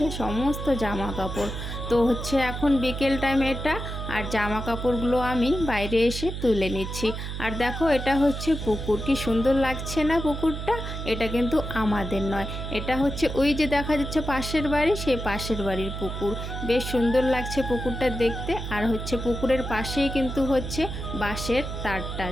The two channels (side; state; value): right; noise; hum, 6 dB below the sound